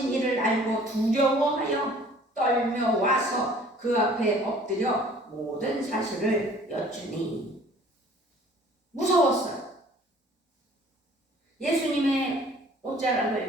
일을 알고 두려워하여 떨며 와서 그 앞에 엎드려 모든 사실을 여쭈니 무서웠어요. 예수님의 옷자락을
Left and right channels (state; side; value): normal; both; correlation 0.52